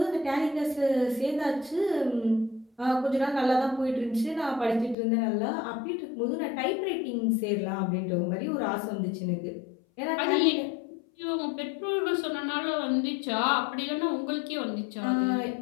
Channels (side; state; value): right; drops out; at 5.0 s